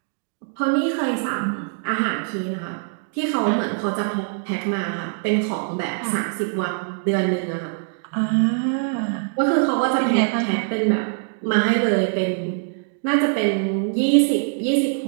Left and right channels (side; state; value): left; silent; digital silence